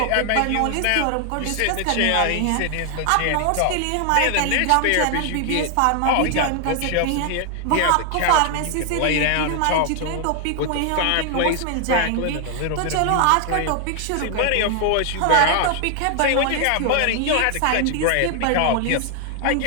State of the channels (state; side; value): different; both; correlation 0.00